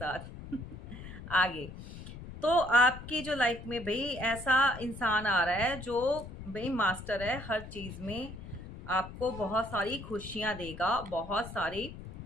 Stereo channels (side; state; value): left; noise; rumble, 12 dB below the sound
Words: आगे। तो आपकी जो लाइफ में भाई ऐसा इंसान आ रहा है जो भाई मास्टर है हर चीज़ में, आपको बहुत सारी खुशियाँ देगा, बहुत सारी